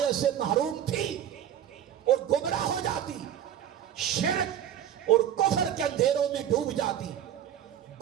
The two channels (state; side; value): quieter; left; 10.3 dB